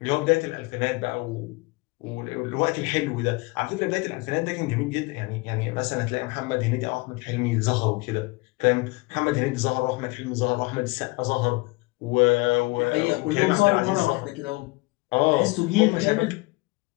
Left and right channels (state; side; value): quieter; right; 25.2 dB